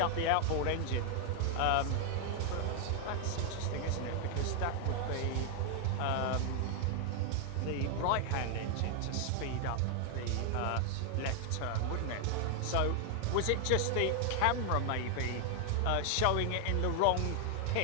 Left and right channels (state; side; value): different; both; correlation 0.00